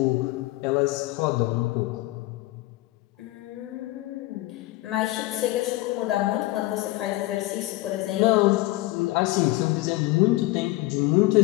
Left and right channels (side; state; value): right; quieter; 19.1 dB